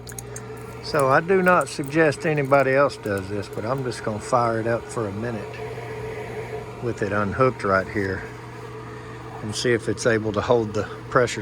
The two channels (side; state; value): both; identical; correlation 1.00